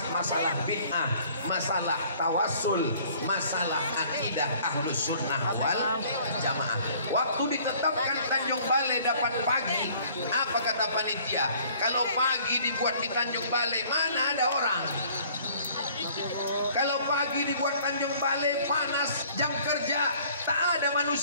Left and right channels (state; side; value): inverted; both; correlation -0.55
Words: masalah bid'ah, masalah tawassul, masalah akidah ahlus sunnah wal jamaah. Waktu ditetapkan Tanjung Balai dapat pagi, apa kata panitia? Kalau pagi dibuat di Tanjung Balai, mana ada orang? Kalau pagi dibuat Tanjung Balai, panas, jam kerja, tak ada